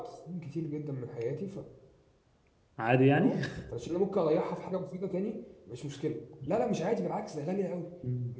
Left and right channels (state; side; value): identical; both; correlation 1.00